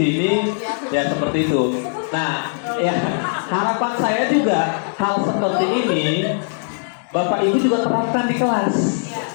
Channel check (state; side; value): silent; right; digital silence